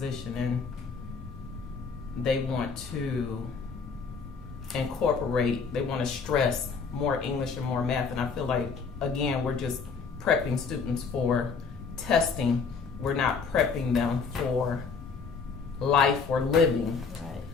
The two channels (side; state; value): right; quieter; 5.3 dB